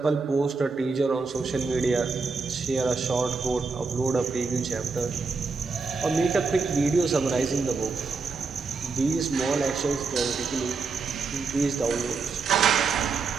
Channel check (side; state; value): left; quieter; 4.5 dB